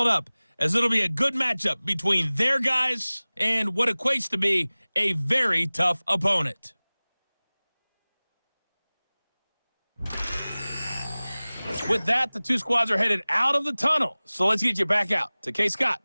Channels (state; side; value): inverted; both; correlation -1.00